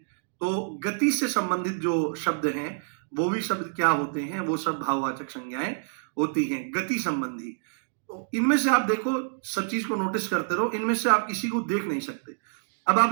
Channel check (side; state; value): left; silent; digital silence